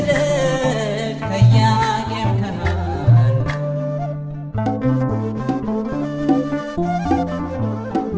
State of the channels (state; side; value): identical; both; correlation 1.00